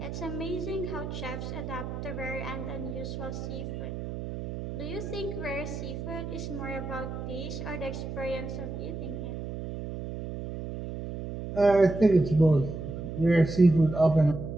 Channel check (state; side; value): noise; right; hum, 7 dB below the sound